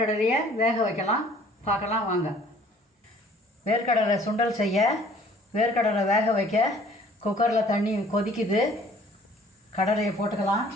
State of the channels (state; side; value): normal; both; correlation 0.54